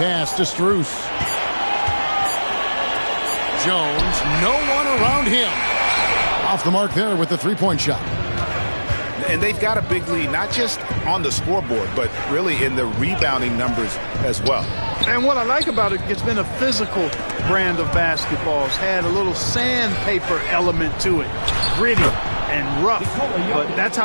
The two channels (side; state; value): both; inverted; correlation -1.00